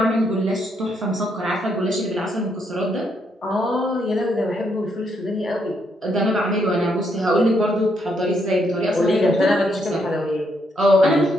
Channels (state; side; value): normal; both; correlation 0.75